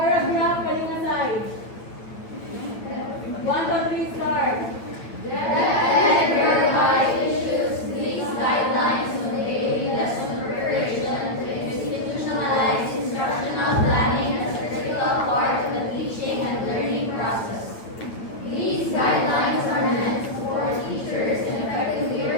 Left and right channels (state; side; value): late; right; 8.7 ms